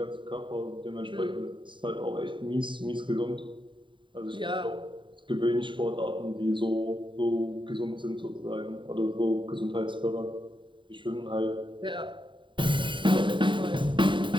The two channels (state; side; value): late; left; 0.23 ms